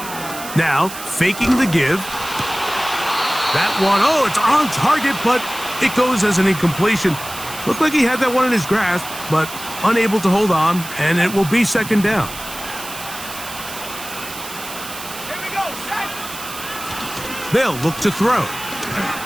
Now, faking the give. That one, oh, it's on target, but it goes as an incompletion. Looked like he had that one in his grasp, but unable to hold on, and it will be 2nd down. Here we go, set. They'll look to throw.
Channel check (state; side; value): noise; right; hiss, 11 dB below the sound